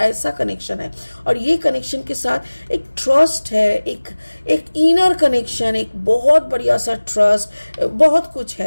कनेक्शन है। और ये कनेक्शन के साथ एक ट्रस्ट है, एक इनर कनेक्शन, एक बहुत बढ़िया सा ट्रस्ट, बहुत कुछ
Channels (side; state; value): both; inverted; correlation -1.00